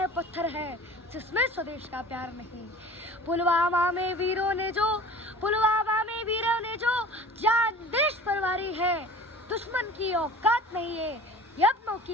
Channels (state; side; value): normal; both; correlation 0.42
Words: पत्थर है, जिसमें स्वदेश का प्यार नहीं। पुलवामा में वीरों ने जो, पुलवामा में वीरों ने जो जान देश पर वारी है, दुश्मन की औकात नहीं है, यत्नों